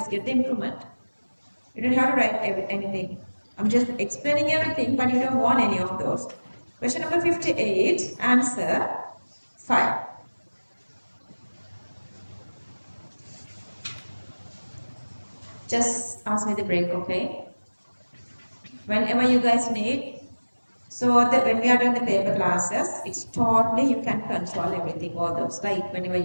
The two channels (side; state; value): both; inverted; correlation -1.00